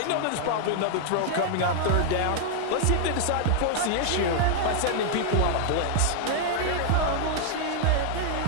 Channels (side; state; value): both; different; correlation 0.00